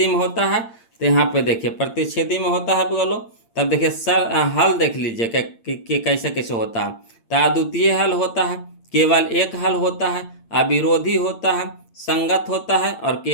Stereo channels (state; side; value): late; right; 8.8 ms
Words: में होता है। तो यहाँ पे देखिए प्रतिच्छेदी में होता है बोलो। तब देखिए सर हल देख लीजिए कि कैसे कैसे होता है। तो अद्वितीय हल होता है, केवल एक हल होता है, अविरोधी होता है, संगत होता है, और